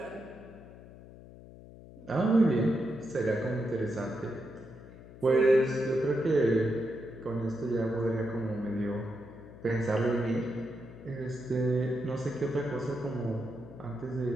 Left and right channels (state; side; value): noise; left; hum, 18 dB below the sound